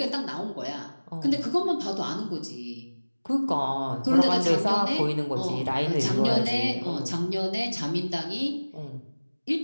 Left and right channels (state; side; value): inverted; both; correlation -1.00